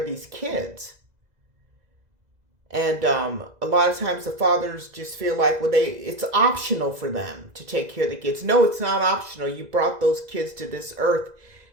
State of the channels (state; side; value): late; left; 2.0 ms